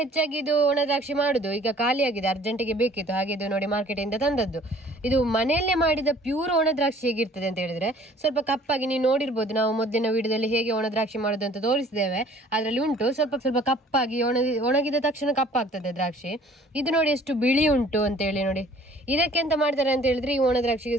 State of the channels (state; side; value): normal; both; correlation 0.53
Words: ಹೆಚ್ಚಾಗಿ ಇದು ಒಣ ದ್ರಾಕ್ಷಿ ಮಾಡುದು. ಈಗ ಖಾಲಿಯಾಗಿದೆ, ಅರ್ಜೆಂಟಿಗೆ ಬೇಕಿತ್ತು, ಹಾಗೆ ಇದು ನೋಡಿ ಮಾರ್ಕೆಟ್ ಇಂದ ತಂದದ್ದು. ಇದು ಮನೆಯಲ್ಲೇ ಮಾಡಿದ ಪ್ಯೂರ್ ಒಣ ದ್ರಾಕ್ಷಿ ಹೇಗಿರ್ತದೆ ಅಂತ ಹೇಳಿದ್ರೆ ಸ್ವಲ್ಪ ಕಪ್ಪಾಗಿ, ನೀವು ನೋಡಿರ್ಬೋದು, ನಾವು ಮೊದಲಿನ ವಿಡಿಯೋದಲ್ಲಿ ಹೇಗೆ ಒಣ ದ್ರಾಕ್ಷಿ ಮಾಡೋದು ಅಂತ ತೋರಿಸಿದ್ದೇವೆ. ಅದರಲ್ಲಿ ಉಂಟು ಸ್ವಲ್ಪ ಕಪ್ಪಾಗಿ, ಒಣಗಿದ ತಕ್ಷಣ ಕಪ್ಪಾಗ್ತದೆ ದ್ರಾಕ್ಷಿ. ಇದು ನೋಡಿ ಎಷ್ಟು ಬಿಳಿ ಉಂಟು ಅಂತ ಹೇಳಿ ನೋಡಿ. ಇದಕ್ಕೆ ಎಂತ ಮಾಡ್ತಾರೆ ಅಂತ ಹೇಳಿದ್ರೆ, ಈ ಒಣ ದ್ರಾಕ್ಷಿಗೆ